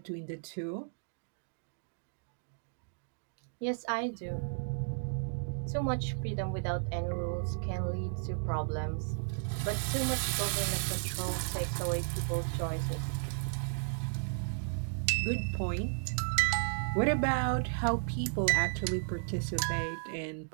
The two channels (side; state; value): left; silent; digital silence